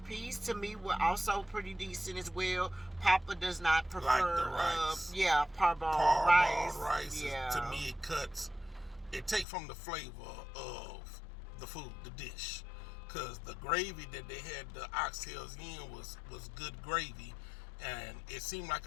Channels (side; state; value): right; drops out; at 9.5 s